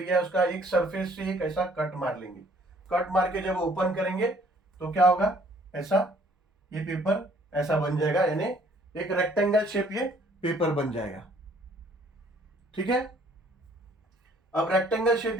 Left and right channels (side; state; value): both; normal; correlation 0.60